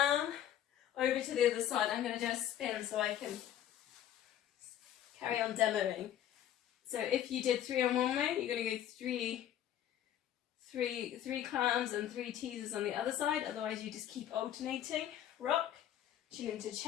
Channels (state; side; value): quieter; right; 11.1 dB